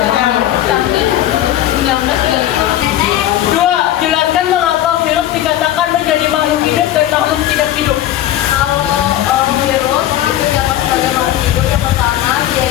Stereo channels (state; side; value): quieter; right; 12.8 dB